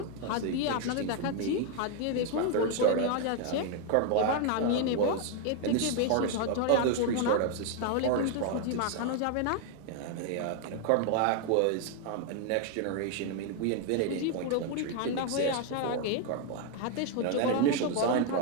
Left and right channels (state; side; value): different; both; correlation 0.01